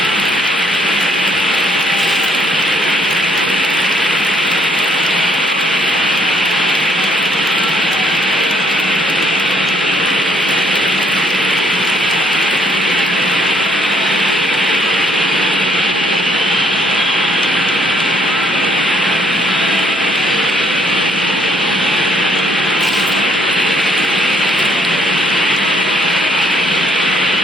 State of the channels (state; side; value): normal; both; correlation 0.67